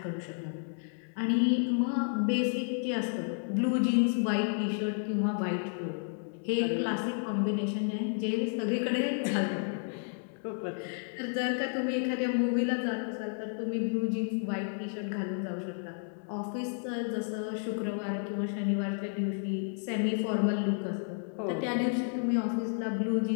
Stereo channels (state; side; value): silent; right; digital silence